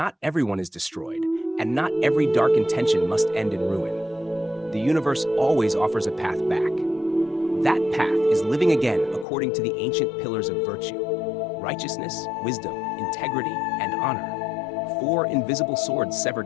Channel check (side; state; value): right; drops out; at 9.2 s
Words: everyone is destroyed, and not every dark intention must end in ruin. The universe always offers a path back. That path is living again according to the ancient pillars of virtue: righteousness, wisdom, integrity, and honor. 4 invisible swords sever